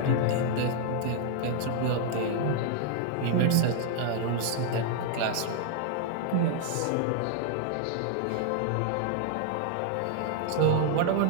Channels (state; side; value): different; both; correlation -0.01